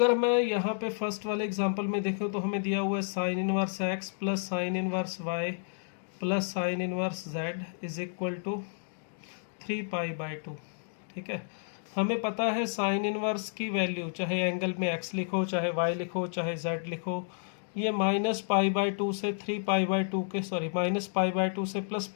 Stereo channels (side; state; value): right; silent; digital silence